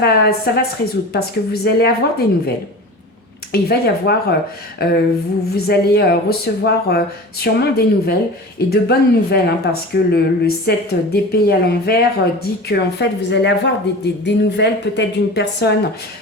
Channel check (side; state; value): both; normal; correlation 0.34